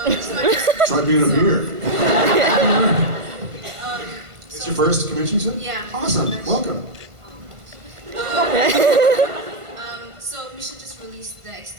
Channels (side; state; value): left; late; 1.5 ms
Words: Try being up here. Um, It's your first convention, you said? Yeah. Awesome. Welcome. So Misha just released the